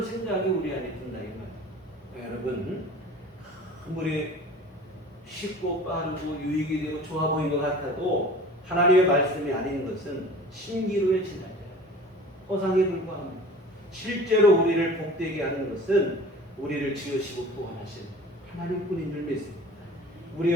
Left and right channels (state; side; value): normal; both; correlation 0.42